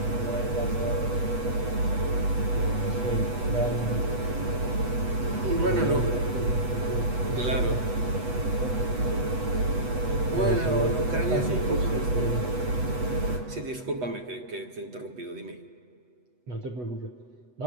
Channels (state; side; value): late; left; 8.1 ms